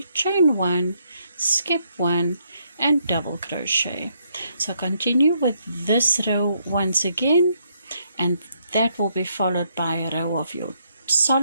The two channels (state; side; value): inverted; both; correlation -0.73